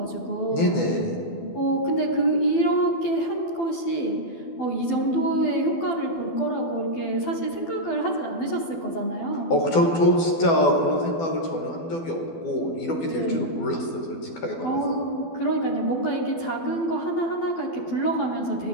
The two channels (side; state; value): right; late; 12 ms